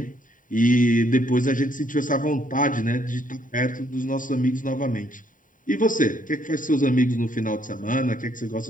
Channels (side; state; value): right; late; 0.39 ms